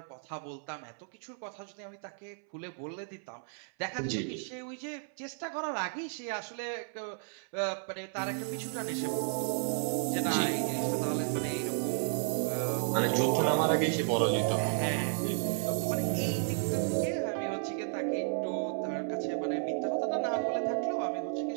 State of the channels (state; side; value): silent; left; 56 dB below the other